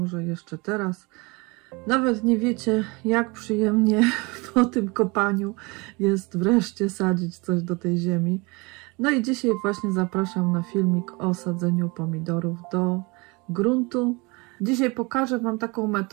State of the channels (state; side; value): quieter; left; 27.0 dB